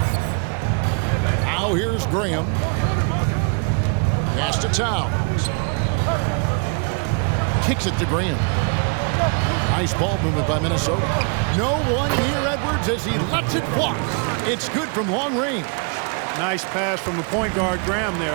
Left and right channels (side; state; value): left; quieter; 37.3 dB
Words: Now here's Graham. Pass to Towns. Kicks it to Graham. Nice ball movement by Minnesota. No one near Edwards as he lets it fly. It's good from long range. Nice pass from the point guard, Graham